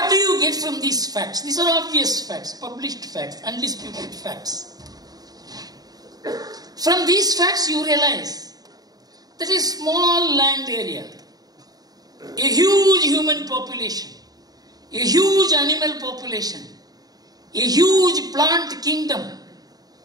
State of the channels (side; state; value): left; late; 0.18 ms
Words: do you get from these facts? These are obvious facts, published facts, undisputed facts. From these facts you realize that a small land area, a huge human population, a huge animal population, a huge plant kingdom